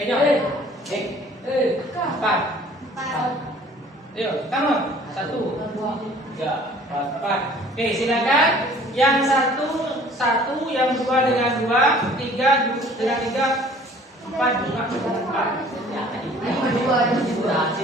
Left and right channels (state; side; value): normal; both; correlation 0.52